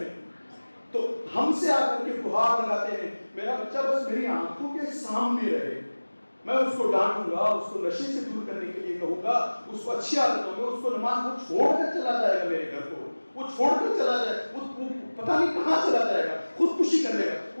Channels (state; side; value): inverted; both; correlation -1.00